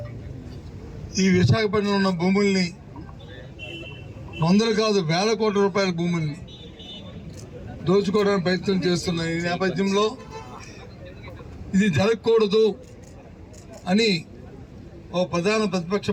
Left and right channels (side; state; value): both; identical; correlation 1.00